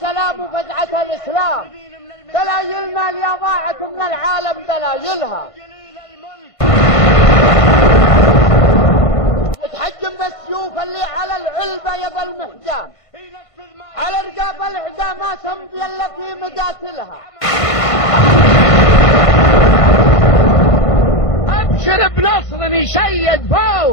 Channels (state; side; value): late; right; 1.5 ms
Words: وفزعة الإسلام، دلايلنا اللي ضاعت من العالم دلايلها. تحجم بالسيوف اللي على العلبة يظل محجام، على رقاب الأعداء ما تمضي إلا في مقاتلها. أبشر بنصر يشيد